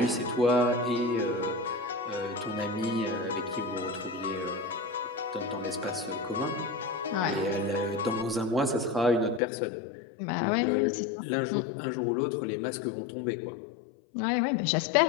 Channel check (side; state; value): right; drops out; at 9.4 s